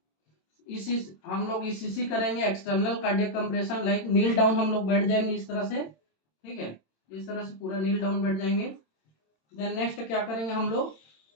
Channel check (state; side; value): late; right; 27 ms